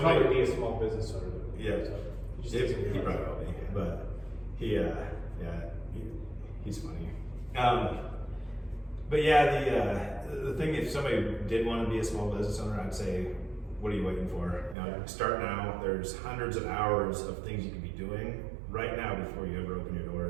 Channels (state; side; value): drops out; left; at 14.8 s